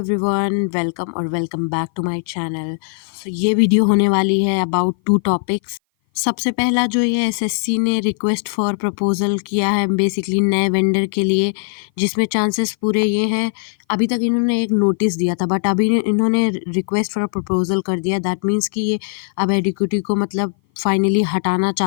welcome और welcome back to my channel. So ये video होने वाली है अबाउट 2 टॉपिक्स। सबसे पहला जो ये एसएससी ने रिक्वेस्ट फॉर प्रपोजल किया है बेसिकली नए वेंडर के लिए, जिसमें चांसेस पूरे ये हैं। अभी तक इन्होंने एक नोटिस दिया था बट अभी इन्होंने रिक्वेस्ट फॉर प्रपोजल कर दिया। दैट मीन्स कि ये अब एडिक्यूटी को मतलब फाइनली हटाना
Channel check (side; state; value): right; silent; 57 dB below the other